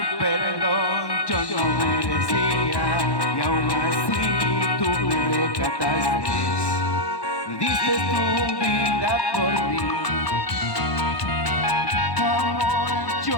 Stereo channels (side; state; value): right; late; 1.2 ms